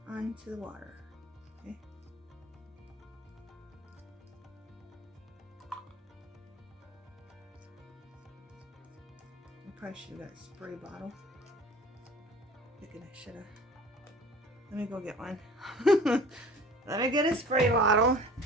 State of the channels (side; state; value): both; normal; correlation 0.44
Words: onto the water. Okay. I probably should have got a spray bottle. Thinking I should have. Let me go get one. Let me get a spray bottle.